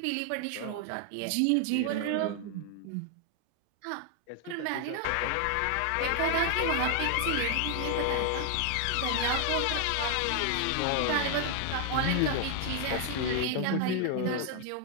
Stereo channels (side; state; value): both; different; correlation 0.00